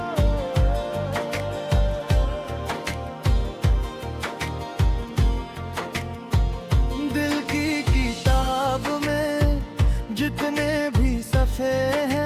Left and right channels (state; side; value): identical; both; correlation 1.00